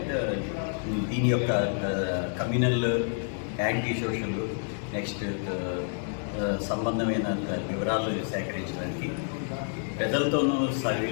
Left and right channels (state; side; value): silent; right; 59 dB below the other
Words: దీని యొక్క కమ్యూనల్ యాంటీ సోషల్, నెక్స్ట్ సంబంధమైన వివరాలు సేకరించడానికి ప్రజలతోనూ